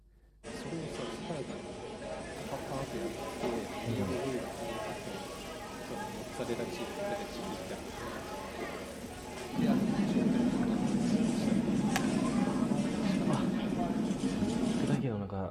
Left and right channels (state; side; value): identical; both; correlation 1.00